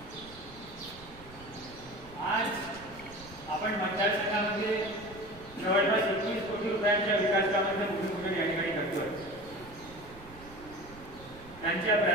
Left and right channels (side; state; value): right; noise; rumble, 19 dB below the sound